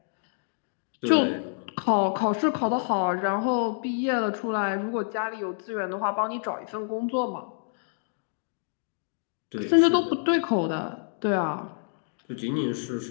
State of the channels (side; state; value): right; silent; digital silence